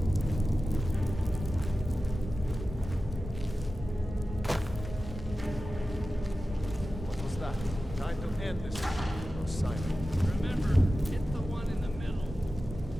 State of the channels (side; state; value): both; normal; correlation 0.94